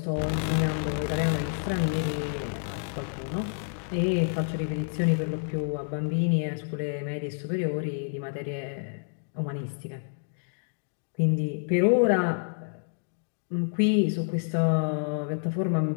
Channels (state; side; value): silent; right; digital silence